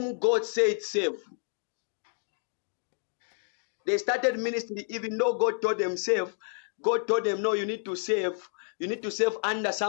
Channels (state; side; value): silent; right; 58 dB below the other